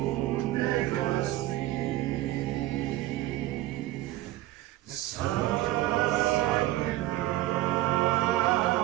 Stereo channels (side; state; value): left; quieter; 15.9 dB